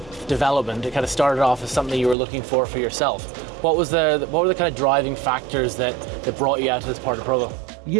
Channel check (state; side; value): drops out; left; at 2.1 s